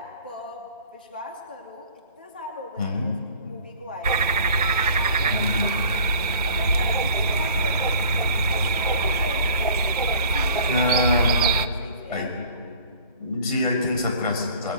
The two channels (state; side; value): inverted; both; correlation -0.47